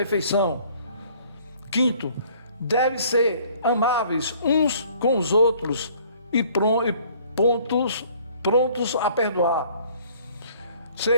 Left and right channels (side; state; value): both; inverted; correlation -0.57